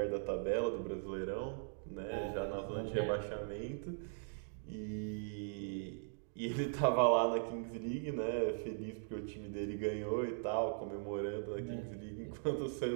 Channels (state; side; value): silent; left; digital silence